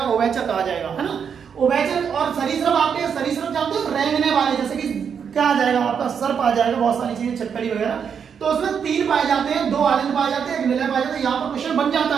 उभयचर कहा जाएगा, है ना। उभयचर और सरीसृप, आपके सरीसृप जानते हो, रेंगने वाले, जैसे कि क्या आ जाएगा आपका, सर्प आ जाएगा, बहुत सारी चीजें, छटकली वगैरह। तो उसमें 3 पाए जाते हैं, 2 आलिंद पाए जाते हैं, 1 निलय पाए जाते हैं। यहाँ पर क्वेश्चन बन जाता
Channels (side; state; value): left; quieter; 7.1 dB